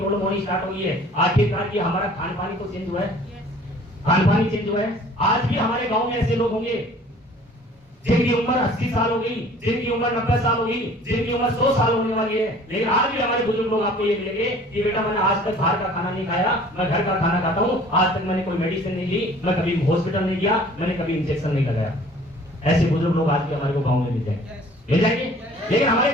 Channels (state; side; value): normal; both; correlation 0.51